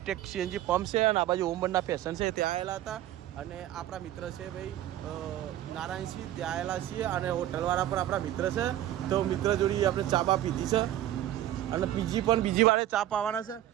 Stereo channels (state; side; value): quieter; left; 13.0 dB